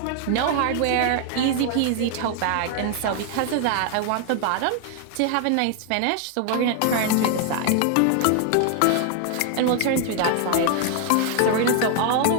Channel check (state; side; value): different; both; correlation 0.00